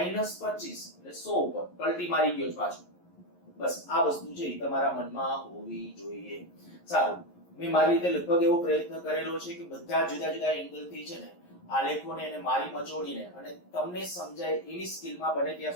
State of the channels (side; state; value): right; late; 11 ms